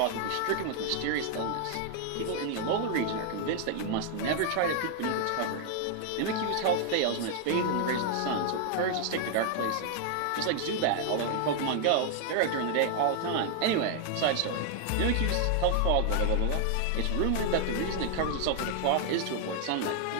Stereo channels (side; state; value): both; different; correlation 0.00